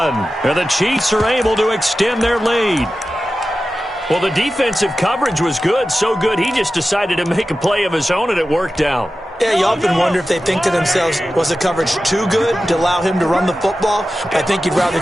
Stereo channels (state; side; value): normal; both; correlation 0.94